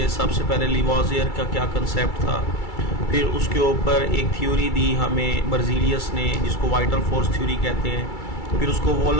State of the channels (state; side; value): late; right; 2.3 ms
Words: सबसे पहले लिवाजियर का क्या कंसेप्ट था, फिर उसके ऊपर एक थ्योरी दी हमें बर्जीलियस ने जिसको वाइटल फोर्स थ्योरी कहते हैं, फिर उसको